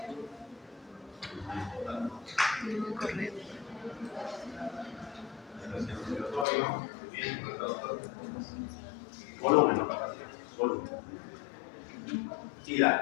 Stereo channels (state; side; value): drops out; right; at 6.5 s